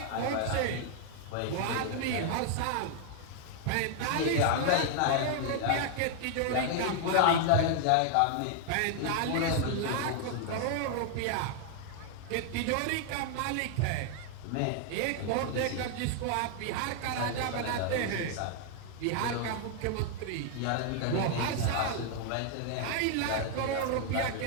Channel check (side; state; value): both; different; correlation 0.00